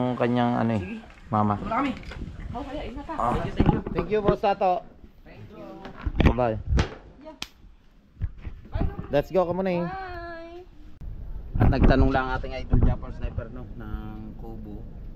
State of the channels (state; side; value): identical; both; correlation 1.00